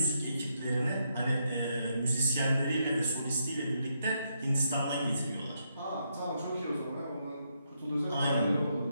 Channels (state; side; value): inverted; both; correlation -0.79